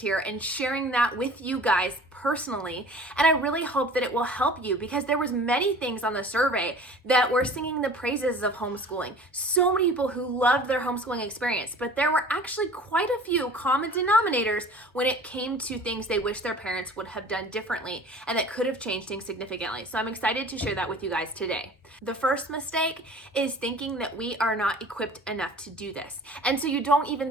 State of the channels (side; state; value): both; normal; correlation 0.44